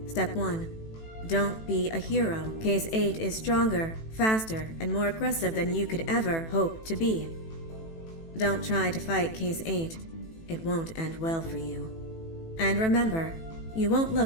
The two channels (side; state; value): right; late; 18 ms